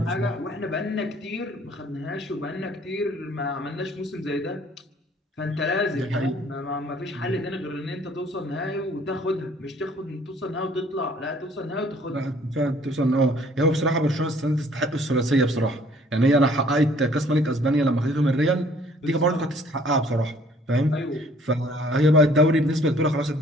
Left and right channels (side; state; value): both; normal; correlation 0.58